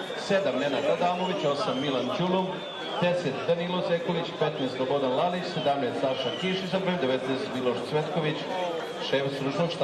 7 Nenad Adamović, 8 Milan Ćulum, 10 Danilo Sekulić, 15 Slobodan Lalić, 17 Saša Kiš i sa brojem 19 Miloš Cvetković, šef stručnog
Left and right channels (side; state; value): both; identical; correlation 1.00